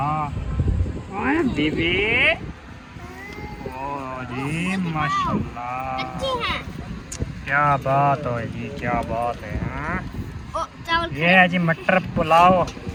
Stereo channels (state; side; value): identical; both; correlation 1.00